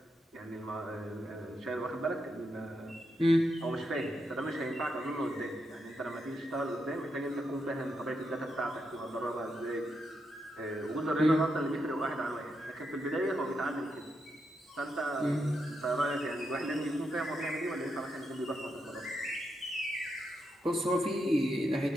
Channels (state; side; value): normal; both; correlation 0.83